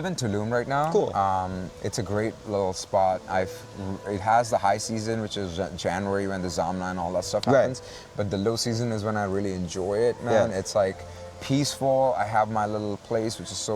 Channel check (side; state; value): both; identical; correlation 1.00